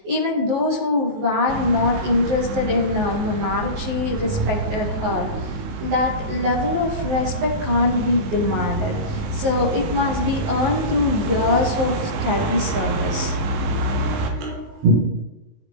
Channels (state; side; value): late; left; 19 ms